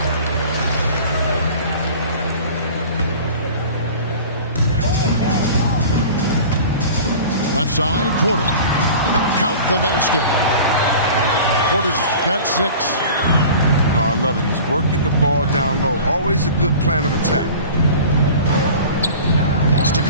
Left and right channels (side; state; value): both; inverted; correlation -0.40